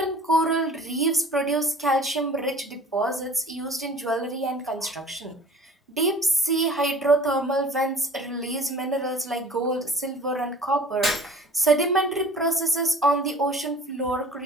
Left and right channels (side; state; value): both; normal; correlation 0.45